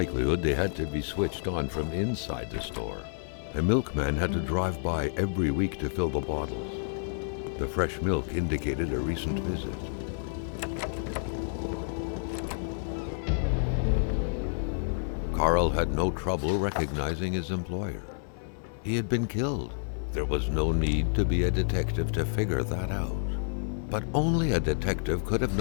they had to be switched on from inside the store. A milkman had to drive by every week to fill the bottles. The fresh milk indicated a recent visit. Carl had no trouble recognizing his employer. He had been killed. There was no need to be a detective to figure that out. But only a detective could have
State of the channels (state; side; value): silent; right; 58 dB below the other